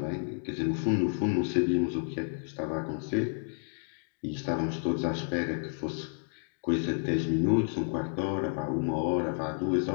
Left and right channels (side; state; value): right; silent; 57 dB below the other